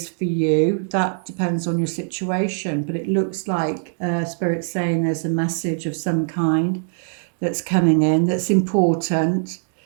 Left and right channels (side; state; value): left; silent; digital silence